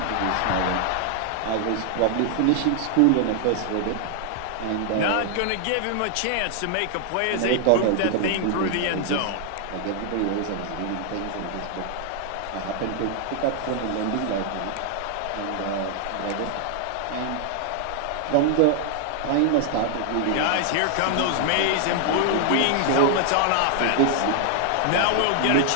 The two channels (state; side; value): different; both; correlation 0.00